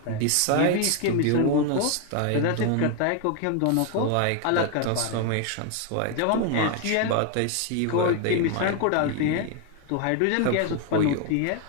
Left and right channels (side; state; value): both; different; correlation 0.01